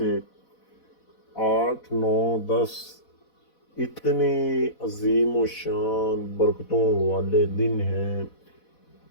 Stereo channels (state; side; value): late; right; 4.1 ms